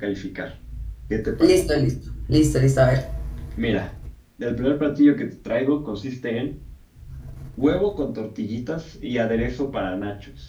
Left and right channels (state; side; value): identical; both; correlation 1.00